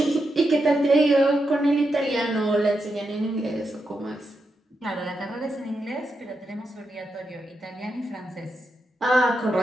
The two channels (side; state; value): both; normal; correlation 0.86